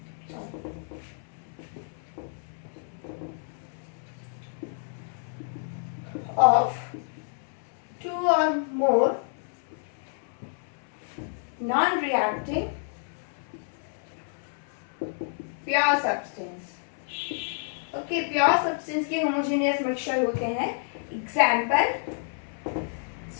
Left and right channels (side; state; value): right; silent; 59 dB below the other